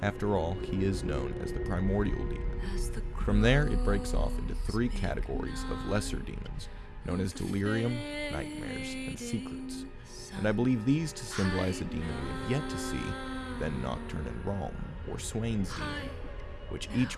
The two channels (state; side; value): identical; both; correlation 1.00